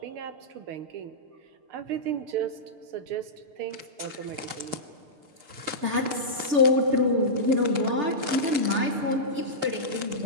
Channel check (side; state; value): left; late; 6.7 ms